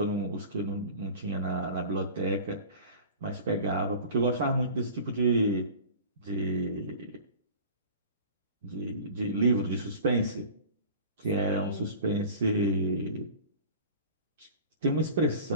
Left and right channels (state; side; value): inverted; both; correlation -0.39